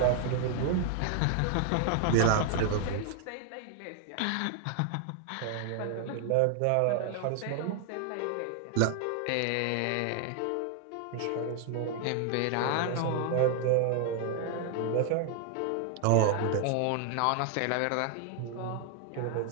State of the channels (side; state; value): both; different; correlation 0.00